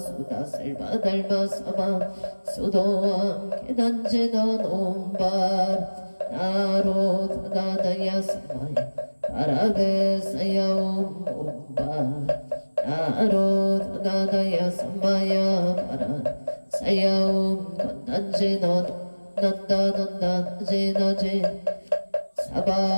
달바 사바 수도와 계단지나놈 나로 다다야 사마야 바라베사야옴 몸바 나로 다다야 사마야 바라 사야옴 건단지너 난다난다지나지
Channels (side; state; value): both; inverted; correlation -1.00